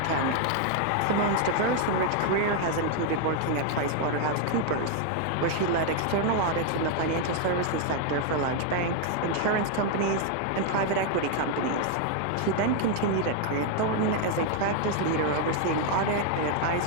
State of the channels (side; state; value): both; different; correlation 0.00